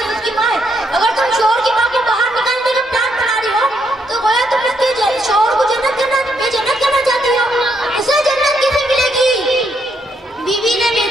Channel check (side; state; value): both; normal; correlation 0.76